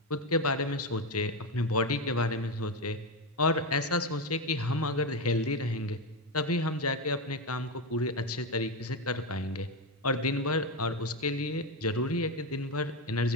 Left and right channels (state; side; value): normal; both; correlation 0.12